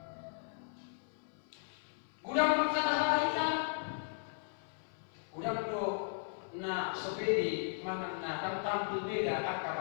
na sopedi manang na tamtam beda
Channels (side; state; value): right; silent; 53 dB below the other